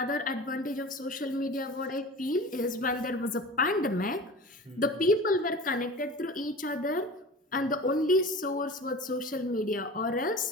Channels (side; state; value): both; normal; correlation 0.36